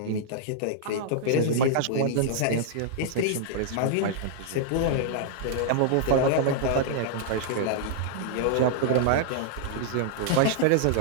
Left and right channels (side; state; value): both; different; correlation -0.01